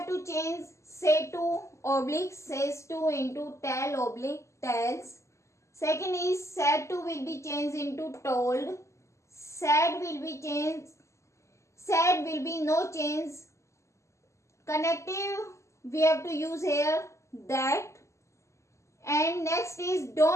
to change say to oblique says to into tell oblique tells. Second is said to will be changed into told. Said will be changed. Said will be no change. Connective we have to use here that. And next is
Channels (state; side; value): late; right; 0.14 ms